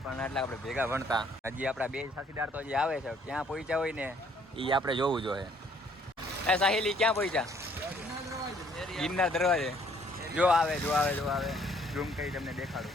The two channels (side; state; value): both; normal; correlation 0.63